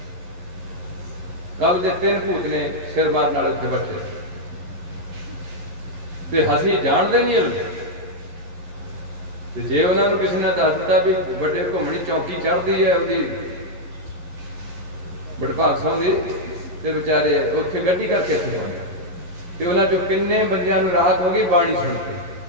ਕੱਲ ਦੇ 3 ਭੂਤ ਨੇ ਸਿਰ ਮਾਰਨ ਵਾਲੇ ਉੱਥੇ ਬੈਠੇ, ਤੇ ਅਸੀਂ ਜਾਣਦੇ ਨਹੀਂ ਇਹ। ਤੇ ਜੇ ਉਹਨਾਂ ਨੂੰ ਕਿਸੇ ਨੇ ਦੱਸ ਦਿੱਤਾ ਵੀ ਵੱਡੇ ਘੁੰਮਣੀ ਚੌਂਕੀ ਚੜ੍ਹਦੀ ਹੈ ਉਹਦੀ ਵਡਭਾਗ ਸਿੰਘ ਦੀ, ਤੇ ਵਿਚਾਰੇ ਉੱਥੇ ਗੱਡੀ ਕਰਕੇ ਇੱਥੇ ਪਹੁੰਚੇ ਤੇ ਉਹਨਾਂ ਚੋਂ ਕਿੰਨੇ ਬੰਦਿਆਂ ਨੂੰ ਰਾਹਤ ਹੋ ਗਈ ਬਾਣੀ ਸੁਣ ਕੇ।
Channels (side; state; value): left; late; 11 ms